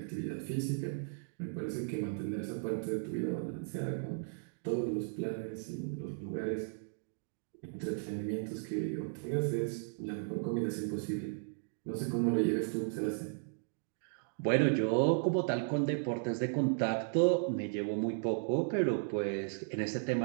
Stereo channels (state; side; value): silent; left; digital silence